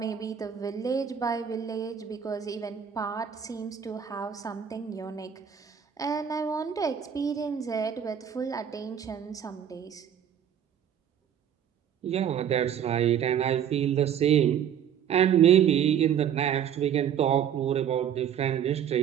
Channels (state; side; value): quieter; left; 8.9 dB